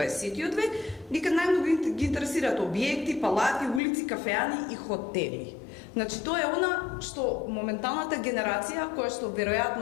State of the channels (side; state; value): right; drops out; at 3.8 s